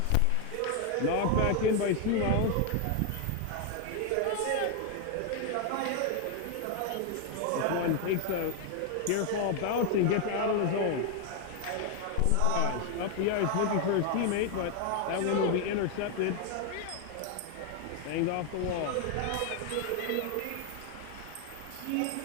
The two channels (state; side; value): different; both; correlation 0.01